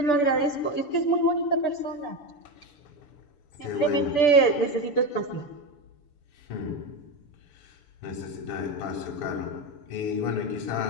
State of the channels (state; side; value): late; right; 6.9 ms